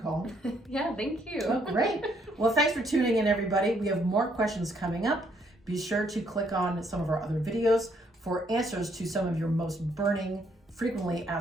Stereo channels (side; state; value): both; normal; correlation 0.70